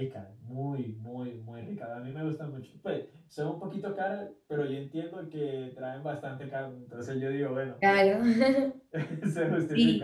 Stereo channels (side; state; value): both; identical; correlation 1.00